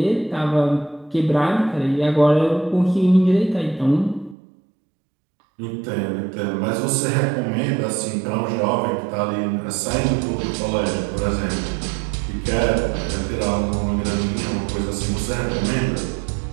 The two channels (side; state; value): left; drops out; at 4.4 s